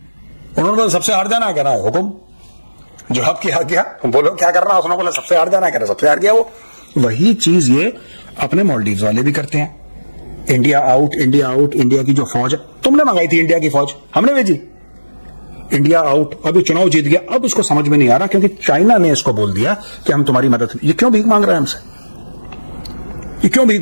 बोला सबसे हार जाना, कह रहा है हुकुम, जवाब किया गया, बोलो क्या करना। उसने बोला सबसे हार जाना, कह रहा सबसे हार गया वो। वही चीज ये अपने मालदीव्स वाले भी करते हैं। India out, India out. India की जो फौज है, तुमने मंगाई थी इंडिया की फौज, हमने भेजी। इंडिया आउट, अभी चुनाव जीत गया, अब इसको समझ में नहीं आ रहा क्योंकि चाइना ने इसको बोल दिया कि हम तुम्हारी मदद। ये क्यों भीख मांग रहा है हमसे? ये क्यों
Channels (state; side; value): inverted; both; correlation -1.00